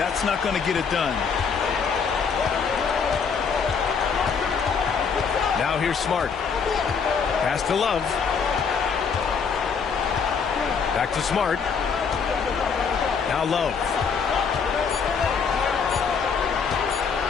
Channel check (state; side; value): quieter; right; 6.0 dB